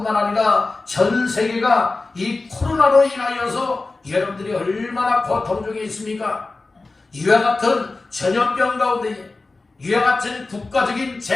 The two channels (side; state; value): right; quieter; 3.5 dB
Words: 아니라 전 세계가 이 코로나로 인하여서 여러분들이 얼마나 고통 중에 있습니까? 이와 같은 전염병 가운데, 이와 같은 국가적인